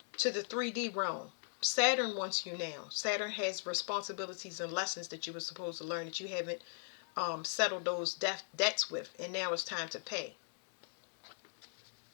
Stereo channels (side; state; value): right; silent; digital silence